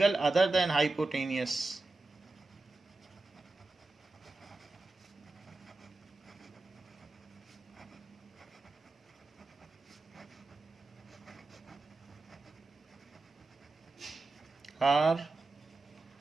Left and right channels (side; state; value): left; quieter; 3.4 dB